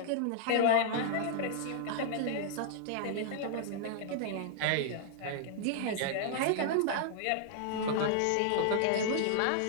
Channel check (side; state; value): both; different; correlation -0.01